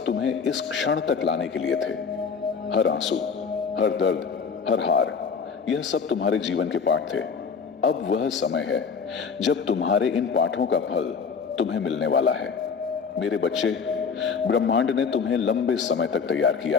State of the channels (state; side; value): quieter; right; 5.7 dB